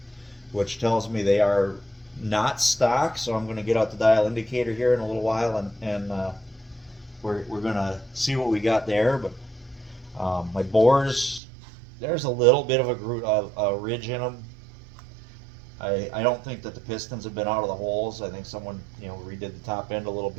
which tells me they are not stock. So I'm going to get out the dial indicator here in a little while, and we're going to see what we got there. But my bores, there's a little bit of a ridge in them. I don't think that the pistons have been out of the holes. I think someone redid the top end a little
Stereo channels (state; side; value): drops out; left; at 11.4 s